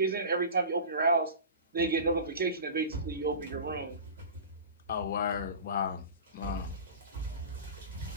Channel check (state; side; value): inverted; both; correlation -0.33